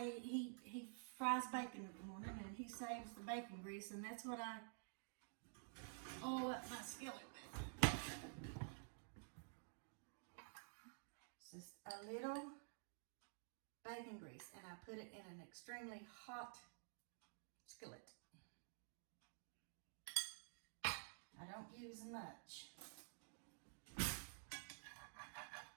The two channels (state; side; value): silent; left; digital silence